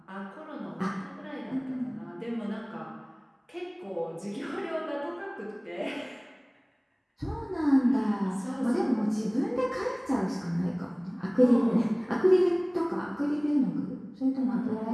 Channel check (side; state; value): both; identical; correlation 1.00